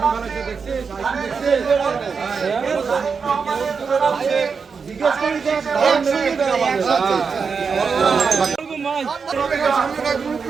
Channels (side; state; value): left; quieter; 5.5 dB